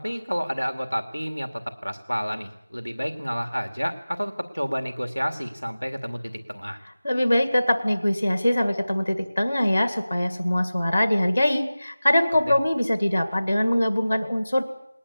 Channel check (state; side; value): inverted; both; correlation -0.96